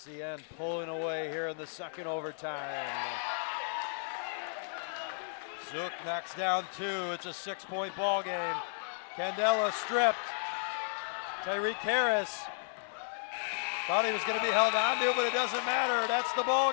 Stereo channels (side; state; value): right; silent; digital silence